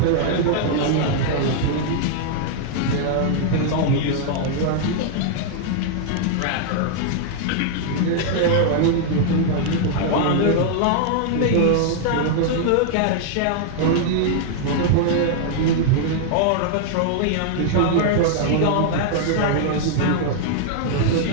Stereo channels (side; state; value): both; different; correlation 0.00